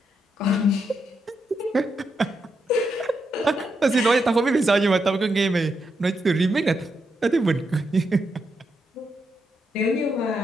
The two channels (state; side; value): normal; both; correlation 0.82